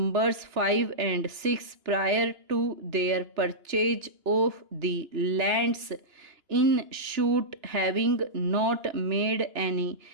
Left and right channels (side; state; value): left; late; 2.9 ms